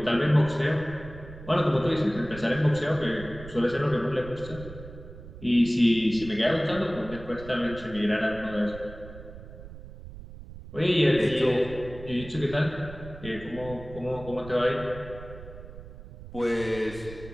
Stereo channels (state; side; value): noise; right; rumble, 15 dB below the sound